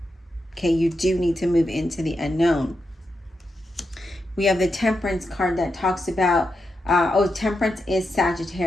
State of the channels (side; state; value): both; normal; correlation 0.86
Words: Okay, you do need to move into the unknown. We have the Temperance card that talks about, Temperance is